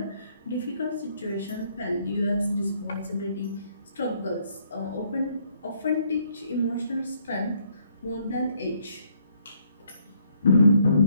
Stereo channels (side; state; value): both; inverted; correlation -0.69